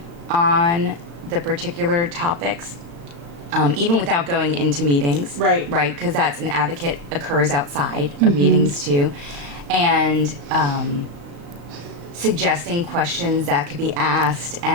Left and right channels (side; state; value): left; late; 35 ms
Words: on the particular topics, even without going into meetings. Right. Right, because that's an advocate occurs outside of meetings too. And suggesting questions that could be asked